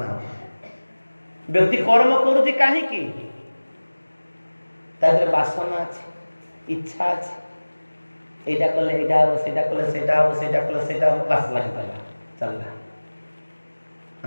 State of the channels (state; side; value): inverted; both; correlation -1.00